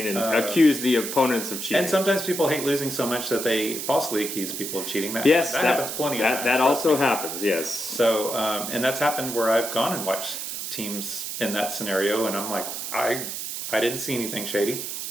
and accuse the opponents of cheating. And sometimes people hate losing so much that they falsely accuse people of cheating. That happens plenty of times. That trust also me. happens. Yes. So, and that's happened where I've gone and watched teams in that scenario, and I'm like, I didn't see anything shady.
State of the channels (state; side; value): noise; right; hiss, 5 dB below the sound